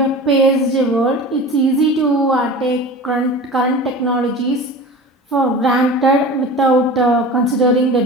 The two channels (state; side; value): normal; both; correlation 0.35